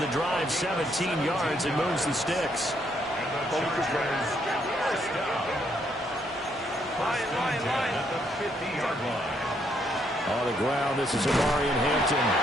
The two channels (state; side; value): normal; both; correlation 0.73